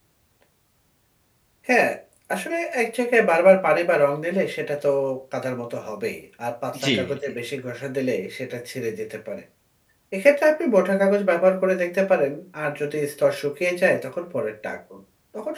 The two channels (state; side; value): identical; both; correlation 1.00